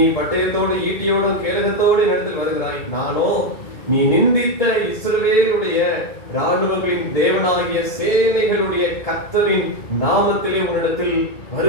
பட்டயத்தோடு ஈட்டியோடும் கேடகத்தோடு என்னிடத்தில் வருகிறாய், நானோ நீ நிந்தித்த இஸ்ரவேலுடைய ராணுவங்களின் தேவனாகிய சேனைகளுடைய கர்த்தரின் நாமத்திலே உன்னிடத்தில்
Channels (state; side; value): late; right; 1.7 ms